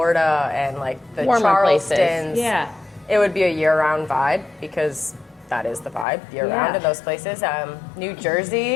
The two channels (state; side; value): drops out; right; at 6.1 s